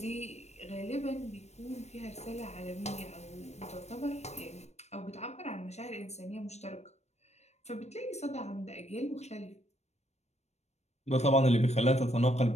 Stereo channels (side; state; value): right; late; 0.32 ms